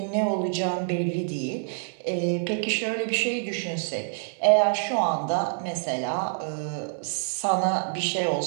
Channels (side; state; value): left; silent; digital silence